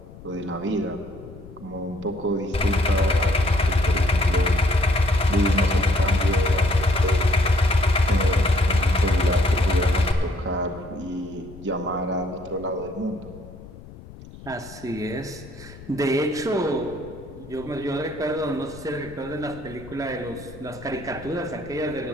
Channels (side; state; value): left; noise; rumble, 18 dB below the sound